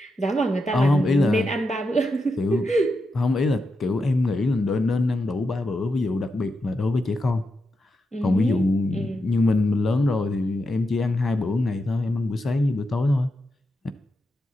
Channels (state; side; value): normal; both; correlation 0.86